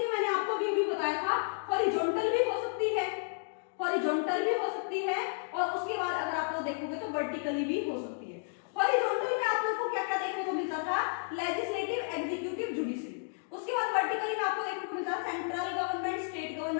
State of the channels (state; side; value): silent; right; digital silence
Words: है। मैंने आपको अभी बताया था, हॉरिजॉन्टल भी हो सकती है, हॉरिजॉन्टल भी हो सकती है, और उसके बाद अगर आप लोग देखोगे तो वर्टिकली भी हो सकती है। हॉरिजॉन्टल में आप लोगों को क्या क्या देखने को मिलता था, लेजिस्लेटिव, एग्जीक्यूटिव, जुडिशरी। उसके बाद वर्टिकली में आपको देखने को मिलता है सेंट्रल गवर्नमेंट, स्टेट